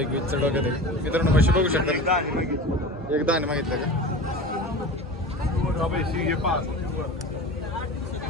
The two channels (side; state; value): both; normal; correlation 0.34